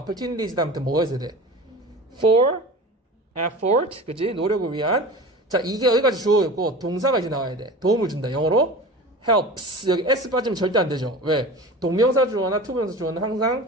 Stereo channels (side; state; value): both; normal; correlation 0.35